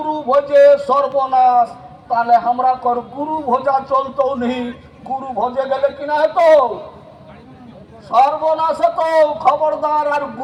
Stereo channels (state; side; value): identical; both; correlation 1.00